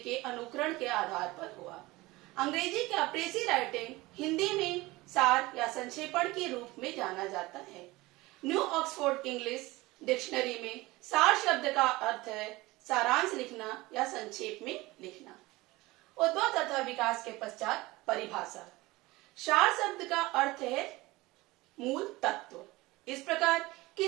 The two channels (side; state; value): left; quieter; 20.6 dB